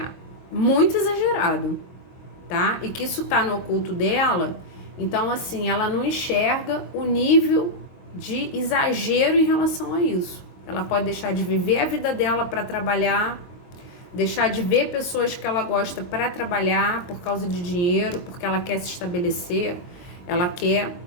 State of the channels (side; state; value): right; late; 22 ms